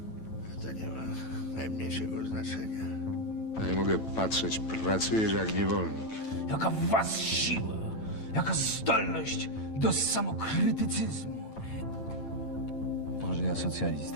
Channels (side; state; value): right; late; 9.1 ms